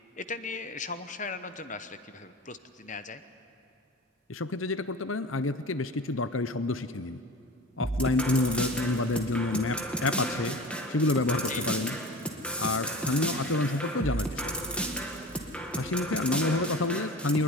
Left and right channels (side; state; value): both; normal; correlation 0.36